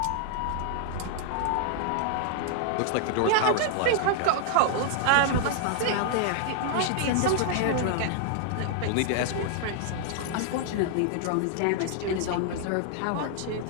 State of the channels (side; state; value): both; different; correlation 0.00